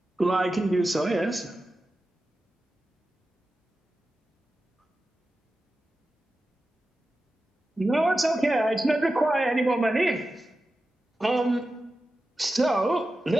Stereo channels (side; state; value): both; normal; correlation 0.92